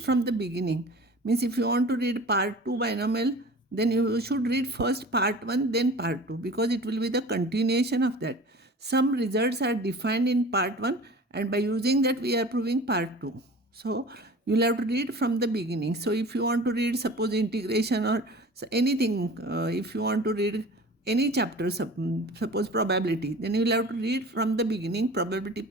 the beginning. Means if you want to read part 2 binomial, then you should read first part 1 then part 2, because it will be the continuation of that. Some results are defined in part 1, and by using that we are proving part 2. So you will have to read from the beginning. So if you want to read suppose integration or anything, if you want to read any chapter, suppose probability, then you will have to read from the beginning, probability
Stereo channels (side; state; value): both; normal; correlation 0.41